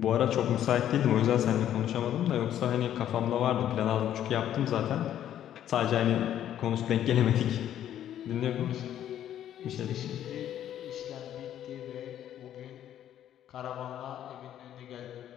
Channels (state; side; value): quieter; right; 11.0 dB